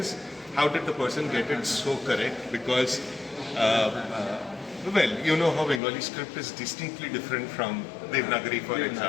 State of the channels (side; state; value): right; drops out; at 5.8 s